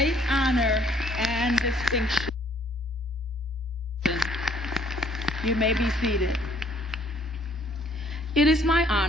honor and distinction. You may be seated. It is my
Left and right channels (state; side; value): normal; both; correlation 0.62